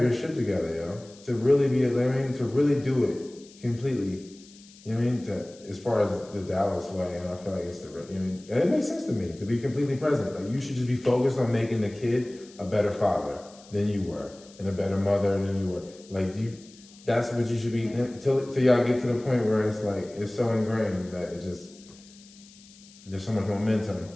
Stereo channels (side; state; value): left; noise; hiss, 23 dB below the sound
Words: your shit together, yo. To really be, to really do it completely. You know what I mean? As far as the Dallas way, and I feel like it's the, you know, and it makes sense to me to be completely present. Like, you should just be focused on making the kid a better father than you were, and a better mother than you were. Like, that's what you should be, till y'all get to the point where it's like, it's so ingrained that it just, there's so much momentum.